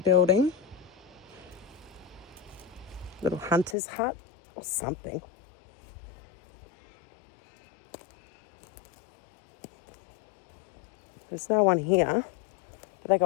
little hunter's hut or something. There's no one here. They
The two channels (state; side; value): drops out; right; at 3.8 s